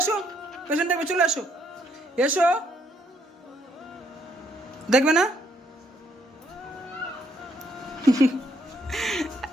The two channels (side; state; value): both; normal; correlation 0.71